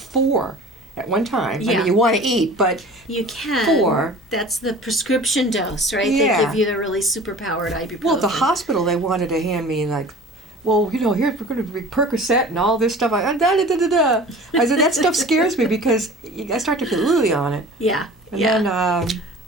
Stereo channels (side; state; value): both; normal; correlation 0.42